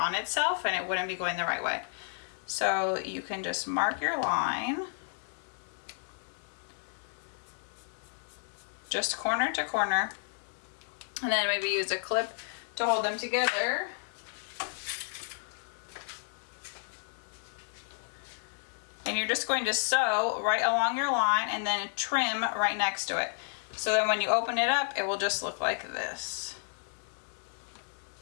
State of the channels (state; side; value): silent; right; digital silence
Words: itself and it wouldn't be going the right way. So you can just mark your line, just corner to corner, and then maybe use a clip to hold them together. And you're just going to sew right along your line and then trim right next to it. So then when you open it up, it will just look like this.